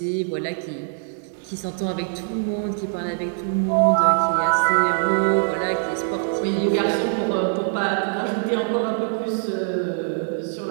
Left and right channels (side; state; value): left; silent; digital silence